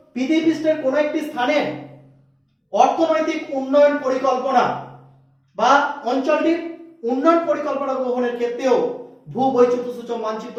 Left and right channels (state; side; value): identical; both; correlation 1.00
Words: পৃথিবীপৃষ্ঠের কোনো একটি স্থানের অর্থনৈতিক উন্নয়ন পরিকল্পনা বা অঞ্চলটির উন্নয়ন পরিকল্পনা গ্রহণের ক্ষেত্রেও ভূবৈচিত্র্য সূচক মানচিত্র